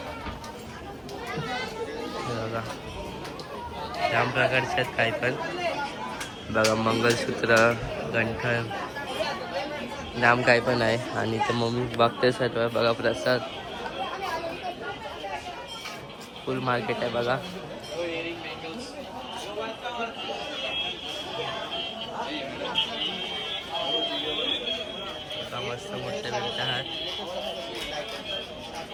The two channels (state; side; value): identical; both; correlation 1.00